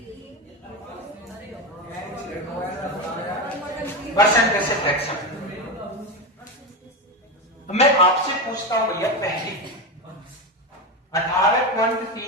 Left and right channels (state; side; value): normal; both; correlation 0.16